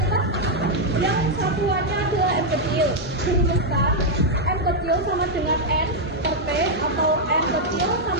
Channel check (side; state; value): both; normal; correlation -0.01